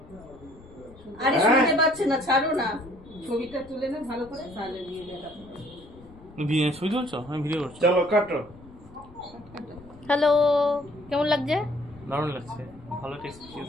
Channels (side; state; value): left; noise; rumble, 22 dB below the sound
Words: আরে শুনতে পাচ্ছে না, ছাড়ো না। ছবিটা তুলে না ভালো করে, তাহলে নিয়ে দেখা। ছবি তুলছো? আমি ভিডিও করছি। চলো কাটো। হ্যালো, কেমন লাগছে? দারুণ লাগছে, ভালো টেস্ট।